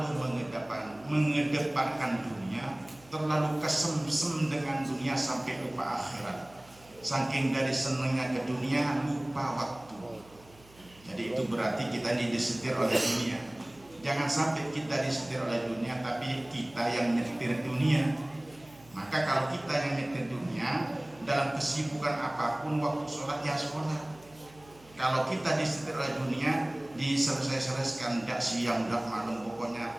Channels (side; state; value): right; noise; hum, 25 dB below the sound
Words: mengedepankan dunia, terlalu kesemsem dengan dunia sampai lupa akhirat. Saking dari senangnya ke dunia, lupa waktu. Jadi itu berarti kita disetir oleh dunia. Jangan sampai kita disetir oleh dunia, tapi kita yang nyetir dunia. Maka kalau kita yang nyetir dunia, dalam kesibukan apapun, waktu sholat ya sholat. Kalau kita disetir oleh dunia, diselesaikan, tidak siang, tidak malam,